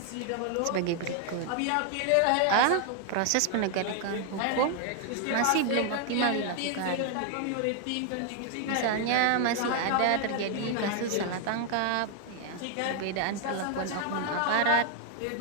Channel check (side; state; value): both; different; correlation 0.00